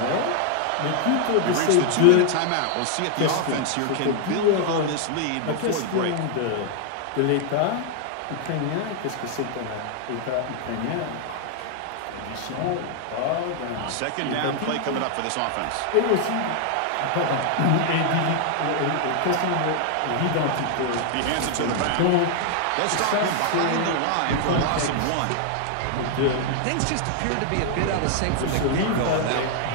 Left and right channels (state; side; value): different; both; correlation 0.00